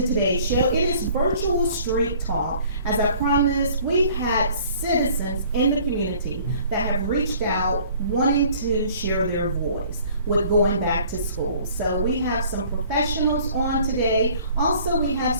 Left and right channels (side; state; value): both; inverted; correlation -0.54